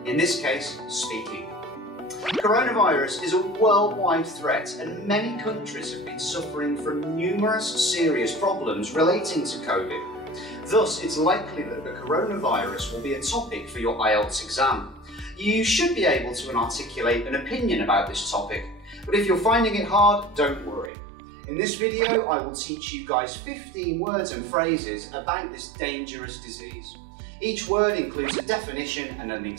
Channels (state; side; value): drops out; left; at 20.9 s